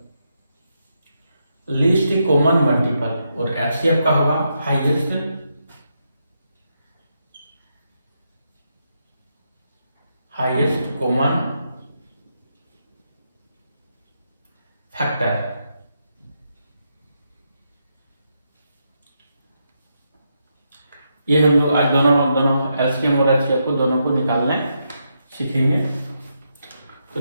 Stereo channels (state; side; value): inverted; both; correlation -0.82